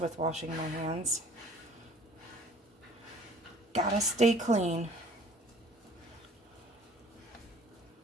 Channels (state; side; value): normal; both; correlation 0.52